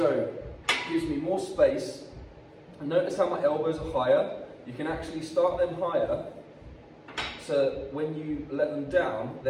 it gives me more space. And notice how my elbows are higher. You can actually start them higher, so when you let them down,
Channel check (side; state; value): both; identical; correlation 1.00